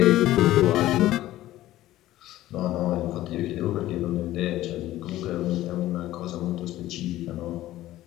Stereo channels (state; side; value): quieter; right; 15.1 dB